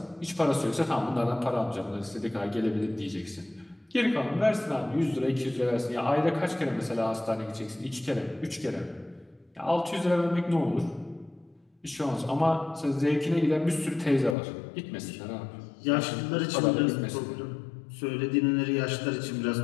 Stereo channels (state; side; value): drops out; right; at 14.4 s